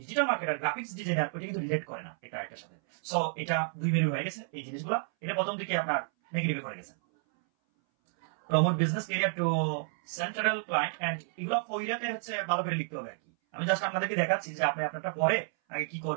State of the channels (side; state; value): left; silent; 57 dB below the other